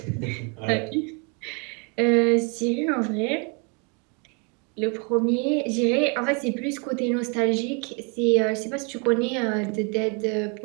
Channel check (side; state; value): left; quieter; 34.4 dB